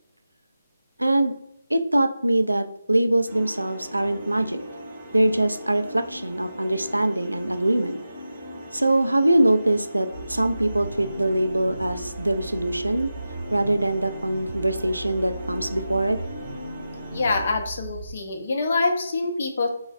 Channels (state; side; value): inverted; both; correlation -0.92